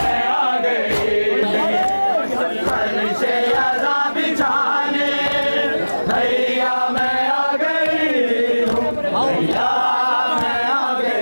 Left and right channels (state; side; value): inverted; both; correlation -1.00